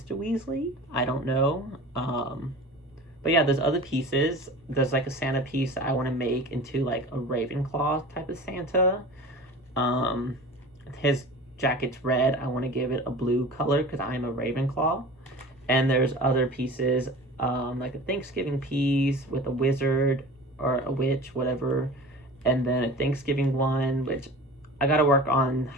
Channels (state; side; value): normal; both; correlation 0.38